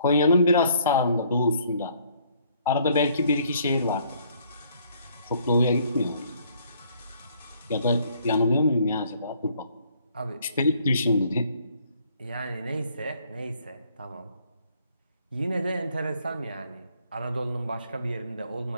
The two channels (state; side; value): inverted; both; correlation -0.64